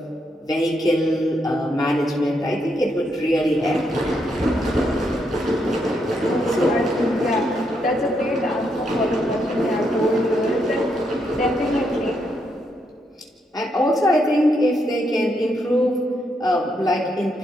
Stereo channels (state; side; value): normal; both; correlation 0.78